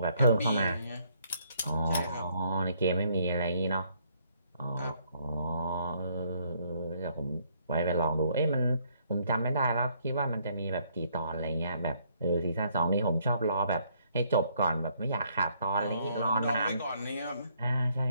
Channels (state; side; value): inverted; both; correlation -0.68